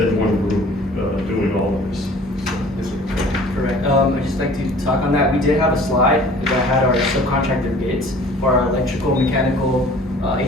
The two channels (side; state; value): both; normal; correlation 0.49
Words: one group doing all of this. Correct. I'd just like to talk on that. We did have a slide that had our subcontractor bids for our electrical, mechanical,